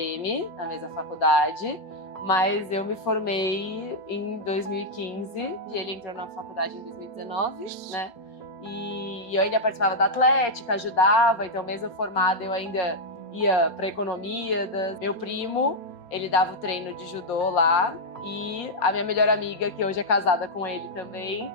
na mesma faculdade, mas eu me formei em 2015 e ele entrou na faculdade em 2019, né? E eu ainda participava da atlética, ajudava, então mesmo formada eu ainda ia para economia. Meu primo, ele dava o treino de judô lá e a minha melhor amiga, que hoje é casada com ele também,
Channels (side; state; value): right; late; 4.3 ms